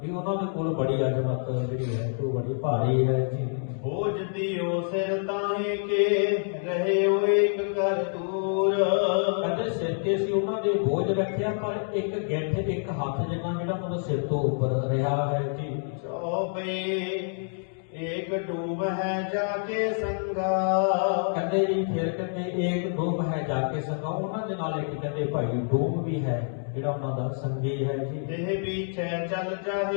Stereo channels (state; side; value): silent; right; digital silence